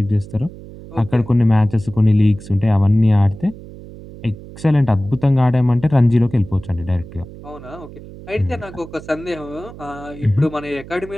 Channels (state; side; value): noise; right; hum, 16 dB below the sound